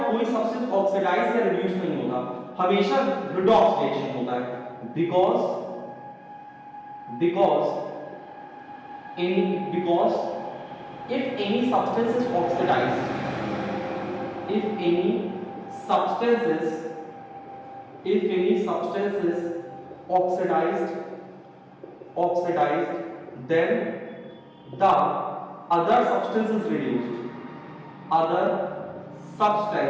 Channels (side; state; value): both; identical; correlation 1.00